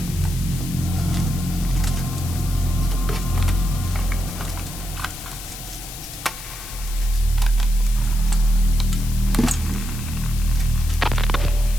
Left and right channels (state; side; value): noise; left; hiss, 12 dB below the sound